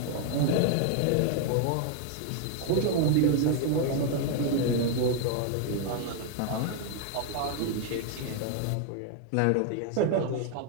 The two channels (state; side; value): different; both; correlation 0.00